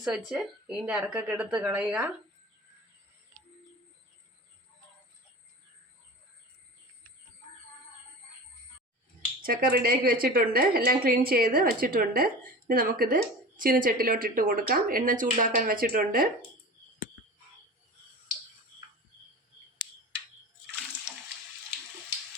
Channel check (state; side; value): normal; both; correlation 0.33